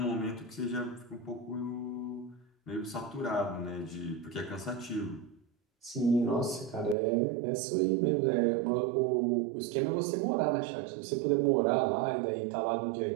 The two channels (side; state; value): left; drops out; at 7.0 s